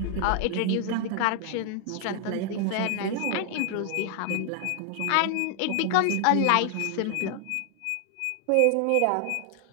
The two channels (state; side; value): different; both; correlation 0.00